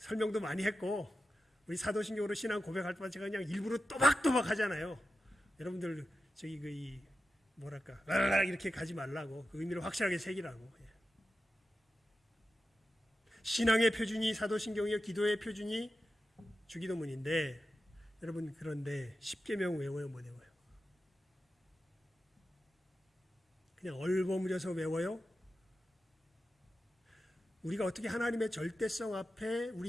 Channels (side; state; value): both; normal; correlation 0.91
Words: 많이 했고 우리 사도신경으로 신앙 고백할 때만 제가 그냥 일부러 또박또박 하잖아요. 여러분들 저기 뭐랄까 라라라 이렇게 가지 말라고, 그 의미를 확실하게 새기라고. 신앙의 표준이 사도신경이요, 기도의 표준이 주기도문인데 여러분, 그런데 십계명 외워요, 못 외워요? 그냥 얼버무려서 외워요? 우리가 어떻게 하나님의 절대성 앞에